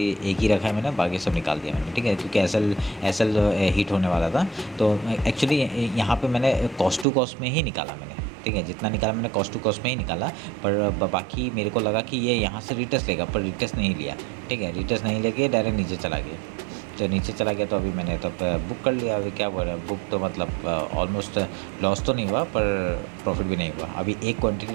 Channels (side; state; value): left; drops out; at 7.1 s